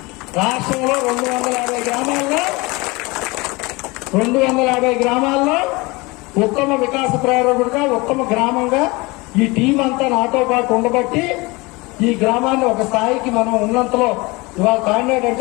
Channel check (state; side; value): quieter; right; 24.4 dB